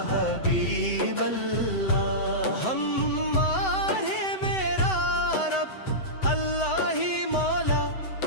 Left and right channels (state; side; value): late; right; 7.9 ms